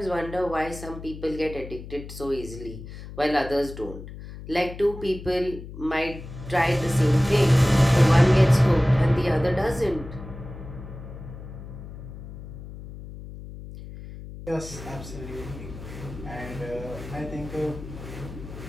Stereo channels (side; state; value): left; noise; hum, 12 dB below the sound